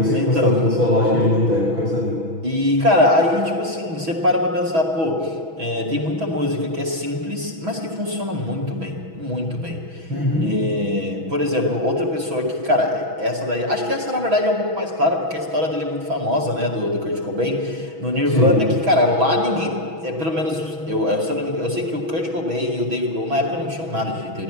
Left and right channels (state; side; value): late; left; 6.1 ms